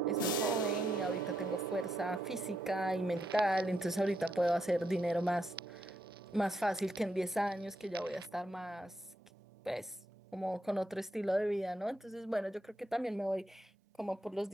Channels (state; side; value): normal; both; correlation 0.80